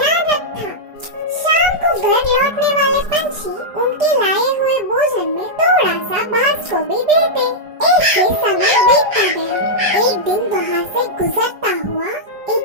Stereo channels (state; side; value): late; left; 4.9 ms